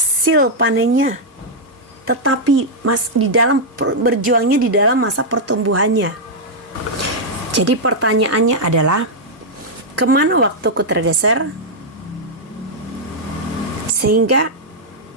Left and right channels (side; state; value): both; normal; correlation -0.04